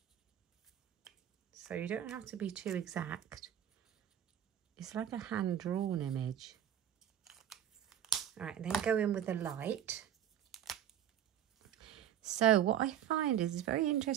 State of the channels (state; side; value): quieter; left; 10.3 dB